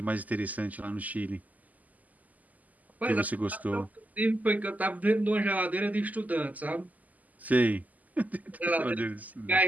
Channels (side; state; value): left; late; 0.078 ms